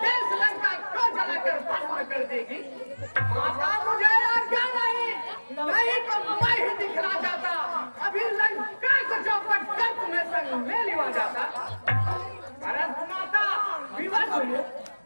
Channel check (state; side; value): inverted; both; correlation -1.00